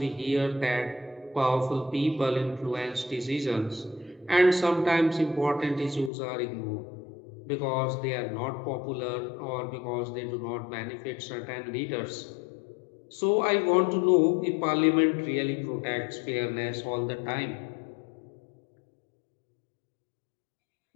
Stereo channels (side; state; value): right; drops out; at 6.1 s